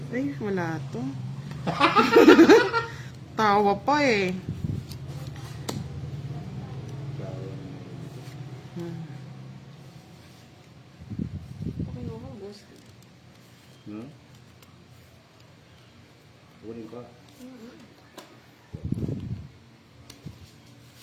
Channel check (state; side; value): identical; both; correlation 1.00